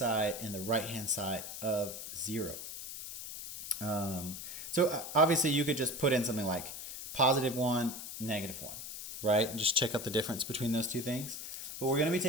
and the right-hand side of 0. So obviously you could just put in something like +1, -1, right? And just check out the difference between those two things. But we're going to be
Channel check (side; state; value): left; noise; hiss, 8 dB below the sound